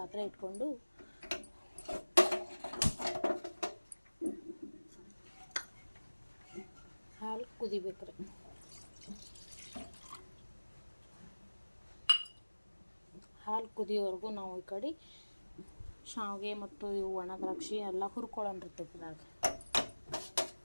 ಇಟ್ಕೊಂಡು ಹಾಲು ಕುದಿಬೇಕು ರೀ. ಹಾಲು ಕುದಿಯೋವರೆಗೂ ನಾವು ಈ ಕಡೆ ಶಾವಿಗೆ ಮತ್ತು ಇವು ಒಣ ದ್ರಾಕ್ಷಿ ಎಲ್ಲ ಹುರ್ಕೊಳ್ಳೋಣ ತುಪ್ಪದಾಗ.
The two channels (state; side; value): inverted; both; correlation -1.00